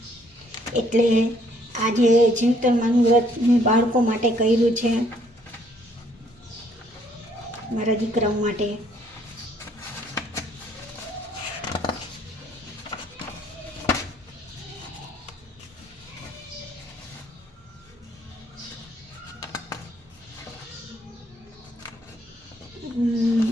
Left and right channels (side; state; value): both; normal; correlation 0.65